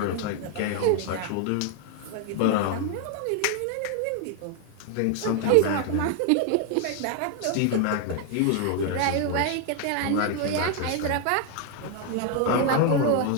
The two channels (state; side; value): different; both; correlation 0.00